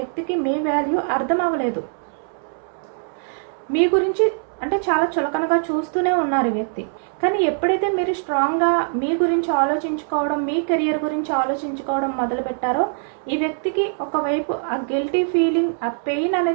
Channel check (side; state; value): left; silent; 64 dB below the other